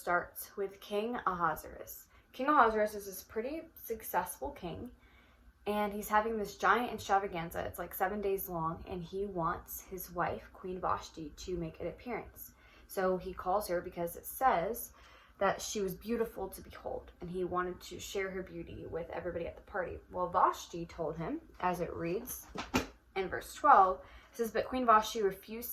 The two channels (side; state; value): both; identical; correlation 1.00